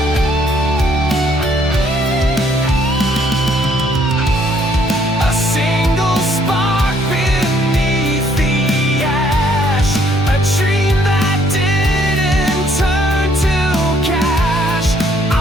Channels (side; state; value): both; normal; correlation 0.66